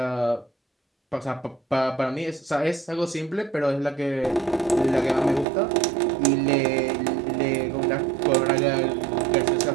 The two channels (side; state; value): left; drops out; at 5.5 s